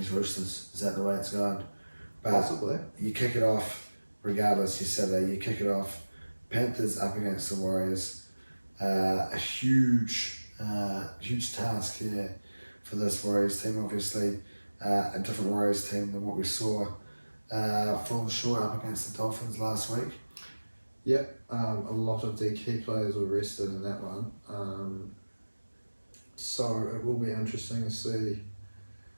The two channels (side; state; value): both; inverted; correlation -1.00